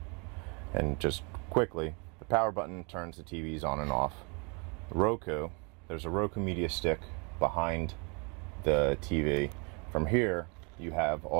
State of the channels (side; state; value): left; quieter; 33.1 dB